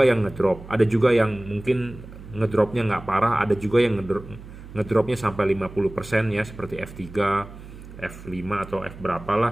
yang ngedrop, ada juga yang mungkin ngedropnya nggak parah, ada juga yang ngedropnya sampai 50% ya, seperti F3, F5 atau F berapa lah,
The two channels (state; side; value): noise; right; hum, 16 dB below the sound